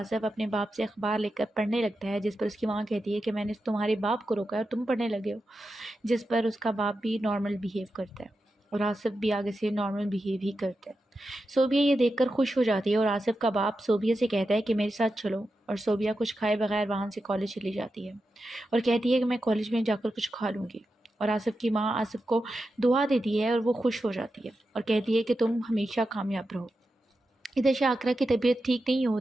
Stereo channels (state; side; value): normal; both; correlation 0.90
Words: اپنے باپ سے اخبار لے کر پڑھنے لگتا ہے، جس پر اس کی ماں کہتی ہے کہ میں نے تمہارے باپ کو روکا ہے اور تم پڑھنے لگے ہو، جس پر اس کا باپ بھی نارمل بیہیو کرتا ہے اور آصف بھی آگے سے نارمل بیہیو ہی کرتا ہے۔ صوبیہ یہ دیکھ کر خوش ہو جاتی ہے اور آصف کا باپ صوبیہ سے کہتا ہے کہ میرے ساتھ چلو، اور صوبیہ کچھ کھائے بغیر وہاں سے کالج چلی جاتی ہے اور کہتی ہے کہ میں کالج میں جا کر کچھ کھا لوں گی، اور آصف کی ماں آصف کو دعا دیتی ہے اور وہ خوش ہو جاتی ہے اور کہتی ہے کہ تم ہمیشہ کامیاب رہو۔ ادھر شاکرہ کی طبیعت ٹھیک نہیں